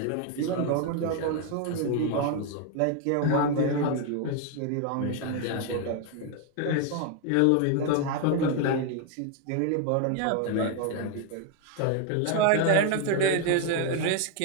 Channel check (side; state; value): both; different; correlation 0.01